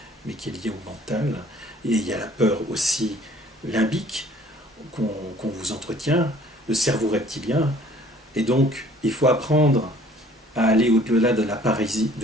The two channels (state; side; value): normal; both; correlation 0.55